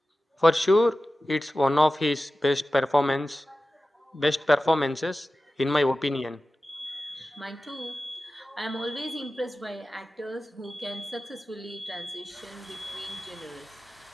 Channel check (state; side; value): normal; both; correlation 0.95